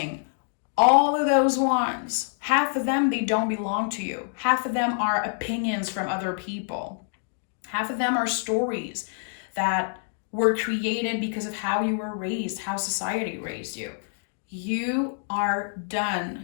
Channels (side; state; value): right; silent; digital silence